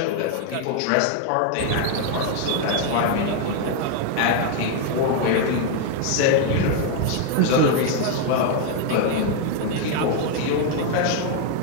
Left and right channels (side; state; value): both; different; correlation 0.00